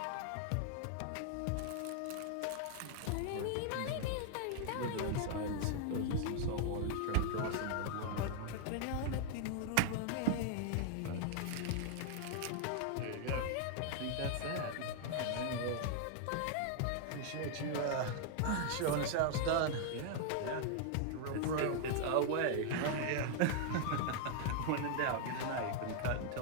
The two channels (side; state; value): both; different; correlation 0.00